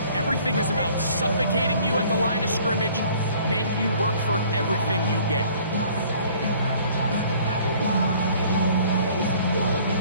Everything is about suffocating you at the line of scrimmage, make you work for everything you get.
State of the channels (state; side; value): inverted; both; correlation -0.54